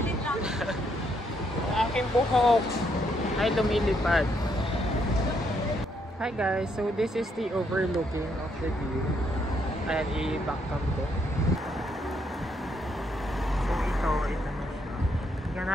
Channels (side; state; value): both; normal; correlation 0.74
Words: lang. Aking buhok ay lumilipad. Hi guys, so this is the overlooking of the view. Ayan, i-backcam ko. So ito na siya. Tingnan